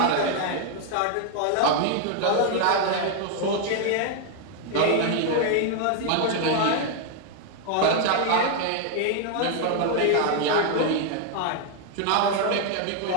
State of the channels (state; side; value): different; both; correlation 0.00